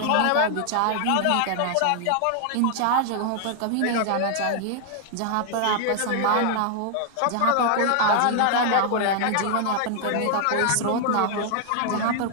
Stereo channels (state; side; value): different; both; correlation 0.00